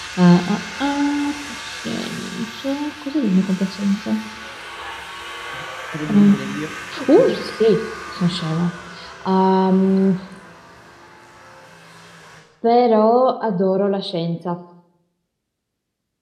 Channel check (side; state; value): both; identical; correlation 1.00